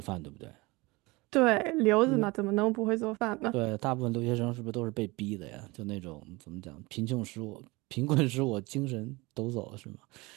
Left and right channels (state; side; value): quieter; left; 23.6 dB